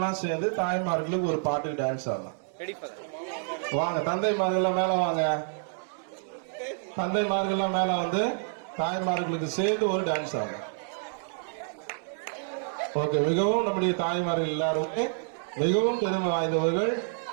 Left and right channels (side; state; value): left; silent; digital silence